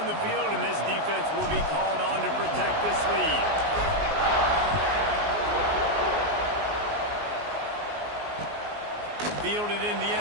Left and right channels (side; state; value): left; late; 19 ms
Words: the field, and this defense will be called on to protect this lead. Fielded in the